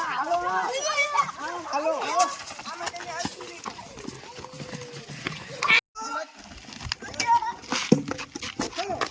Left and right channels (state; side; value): identical; both; correlation 1.00